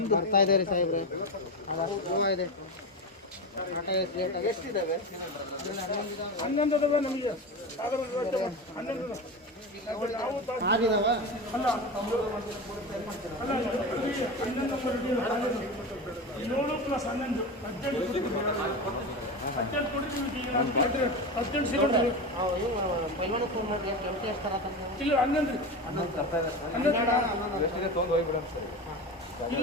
ಬರ್ತಾ ಇದೆ ರೀ ಸಾಹೇಬ್ರೆ, ಅದು ಗೋವಾ ಇದೆ. ಎಷ್ಟಿದ್ದಾವೆ? 11 ಅದಾವೆ ನಮಗೆ, 11 ನಾವು ಆರಿದಾವ ಅಲ್ಲ ಅಲ್ಲ 11 7 ಪ್ಲಸ್ 11 18 ಕೊಡ್ತೀವಿ. ಈಗ ನಾನು 18 ಸಿಲಿಂಡರ್ ಪೈಲ್ವಾನ ಫೋನ್ ಮಾಡಿ ಎಂಟಿ ಎಷ್ಟಾರ ಇಲ್ಲ 11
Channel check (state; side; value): normal; both; correlation 0.23